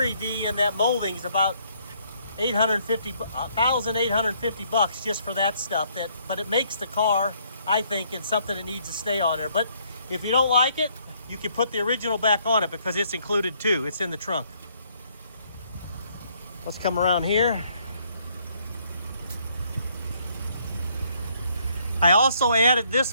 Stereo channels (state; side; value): inverted; both; correlation -0.68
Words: V and that molding is about $1,850 just for that stuff. But it makes the car, I think, in something that needs to stay on there. But if you don't like it, you can put the original back on it because it's included too. It's in the trunk. Let's come around here. I also added